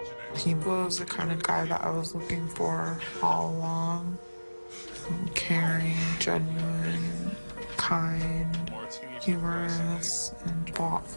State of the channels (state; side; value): inverted; both; correlation -1.00